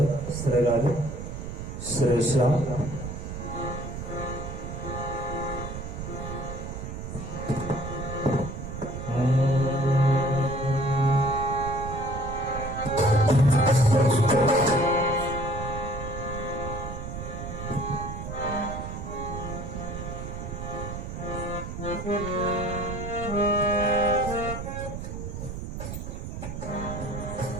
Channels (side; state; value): right; noise; rumble, 7 dB below the sound